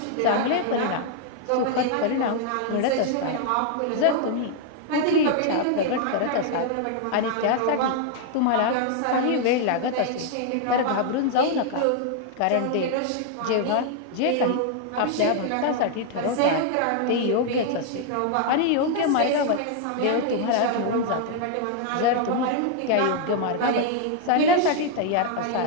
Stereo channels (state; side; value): different; both; correlation 0.00